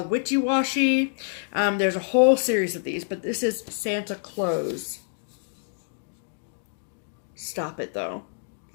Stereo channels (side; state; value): right; silent; digital silence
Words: Witchy Washy. There's a whole series of these, but this is Santa Claus. Stop it though.